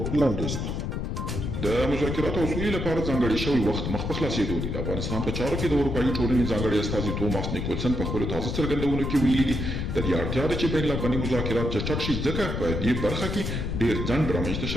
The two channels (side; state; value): left; noise; rumble, 2 dB below the sound